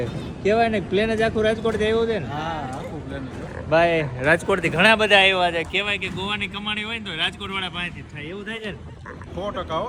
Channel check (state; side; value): identical; both; correlation 1.00